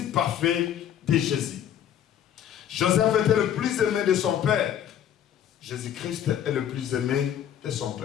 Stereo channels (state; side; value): quieter; right; 10.0 dB